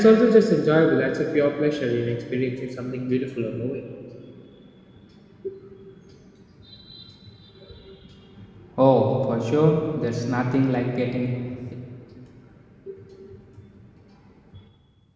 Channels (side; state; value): both; identical; correlation 1.00